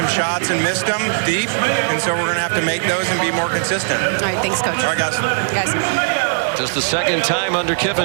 shots and missed them deep, and so we're going to have to make those and be more consistent. All right, thanks, Coach. All right, guys. Just the second time under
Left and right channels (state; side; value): silent; left; digital silence